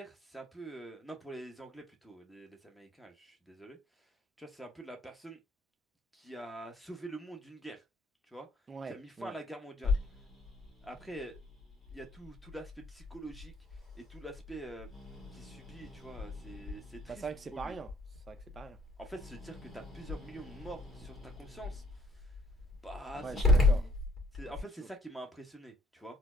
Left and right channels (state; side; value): normal; both; correlation 0.62